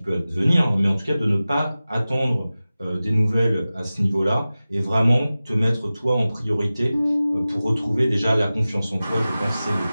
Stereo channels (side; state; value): both; inverted; correlation -0.96